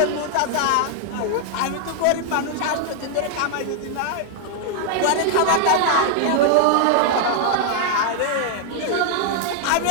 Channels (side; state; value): both; different; correlation 0.00